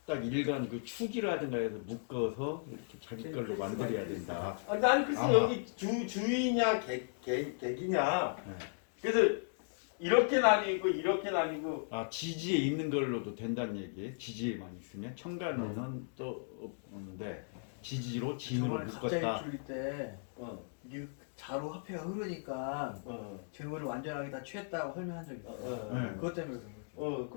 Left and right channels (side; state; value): right; silent; digital silence